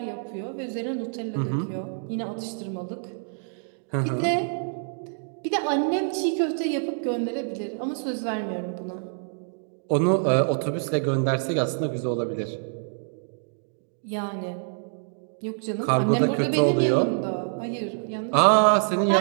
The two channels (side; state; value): left; silent; digital silence